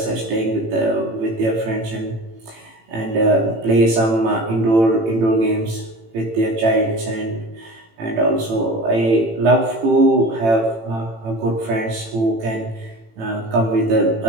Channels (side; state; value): left; late; 18 ms